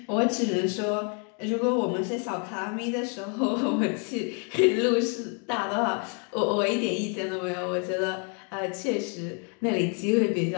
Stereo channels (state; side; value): quieter; right; 39.4 dB